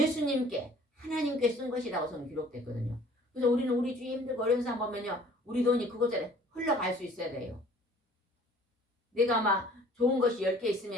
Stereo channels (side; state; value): both; normal; correlation 0.52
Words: 하나님께 쓴 것이라고 성경 기록됐거든요. 그래서 우리는 우리 주위 힘들고 어려운 사람 보면요, 우리 돈이 그곳에 흘러갈 수 있어야 돼요. 내가 막 좋은 것이 10개